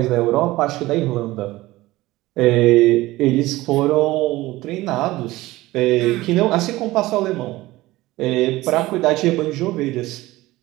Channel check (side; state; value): left; quieter; 18.3 dB